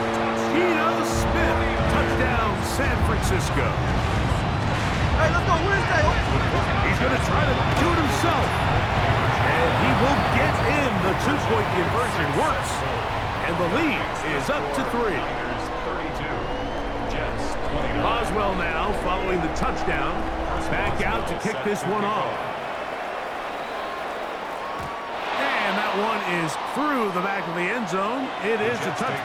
Geno Smith. Touchdown, San Francisco. Hey, let's go. Wednesday. He's going to try to do it himself. And he will get in. The 2-point conversion works. And the lead is up to 3. 32. Jets 29. Boswell now following the touchdown. Back out to kick this one off. And that one is through the back of the end zone. It is a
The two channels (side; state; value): both; identical; correlation 1.00